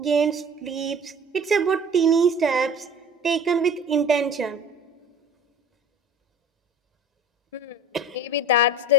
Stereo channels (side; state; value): both; normal; correlation 0.42